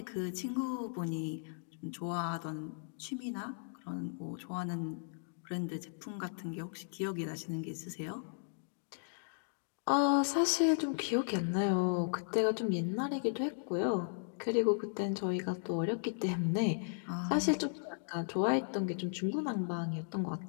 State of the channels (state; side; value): silent; right; digital silence